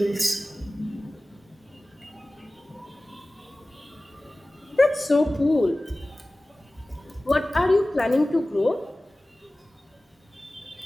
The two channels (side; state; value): both; normal; correlation 0.97